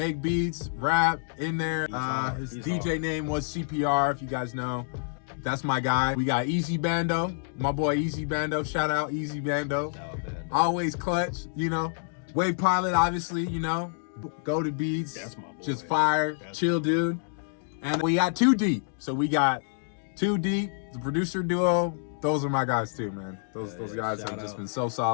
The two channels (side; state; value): right; silent; digital silence